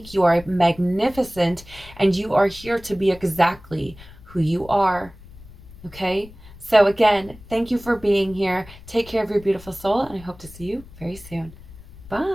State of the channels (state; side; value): noise; left; rumble, 19 dB below the sound